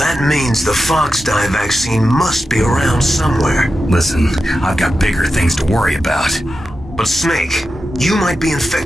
means the Fox dye vaccine must be around somewhere. Listen, I've got bigger things to worry about. But Snake, you might be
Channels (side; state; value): both; normal; correlation 0.91